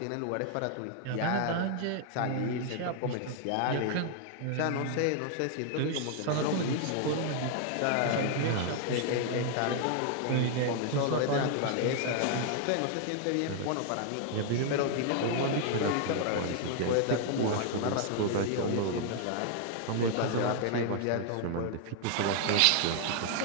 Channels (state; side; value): different; both; correlation 0.00